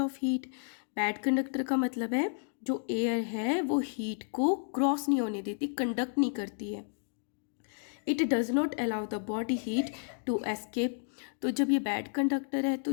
heat, bad conductor का मतलब है जो एयर है वो हीट को क्रॉस नहीं होने देती, कंडक्ट नहीं करती है। It does not allow the body heat to escape. तो जब ये बैड कंडक्टर है तो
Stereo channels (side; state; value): right; silent; 57 dB below the other